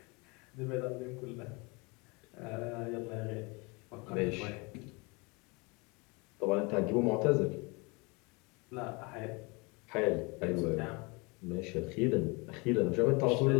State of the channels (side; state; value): right; quieter; 28.1 dB